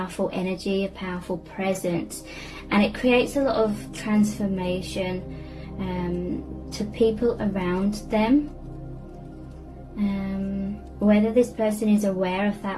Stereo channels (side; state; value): both; identical; correlation 1.00